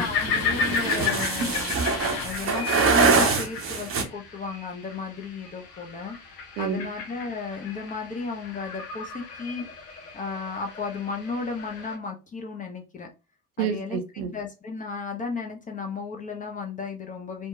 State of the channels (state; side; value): normal; both; correlation 0.11